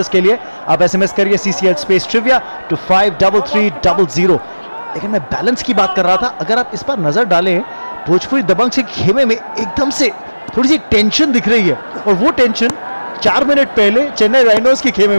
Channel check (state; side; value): inverted; both; correlation -1.00